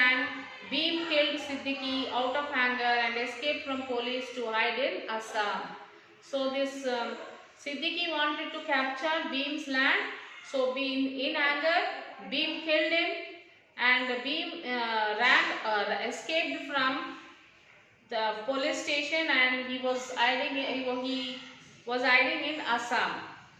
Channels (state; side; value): identical; both; correlation 1.00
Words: Bhim killed Siddiqui out of anger and escaped from police to hide in Assam. So this Siddiqui wanted to capture Bhim's land. So in anger, Bhim killed him, and Bhim escaped from the police station, and he was hiding in Assam.